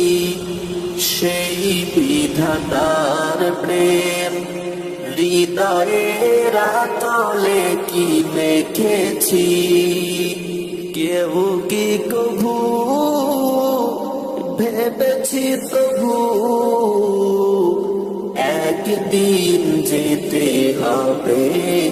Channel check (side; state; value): both; identical; correlation 1.00